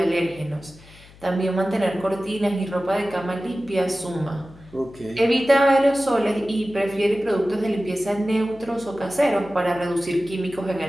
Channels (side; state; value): left; noise; hum, 23 dB below the sound